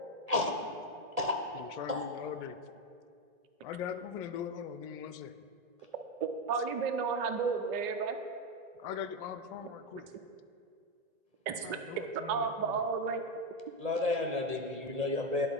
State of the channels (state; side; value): late; left; 1.9 ms